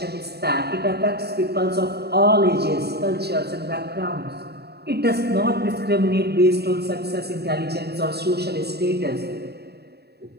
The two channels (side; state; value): left; late; 0.47 ms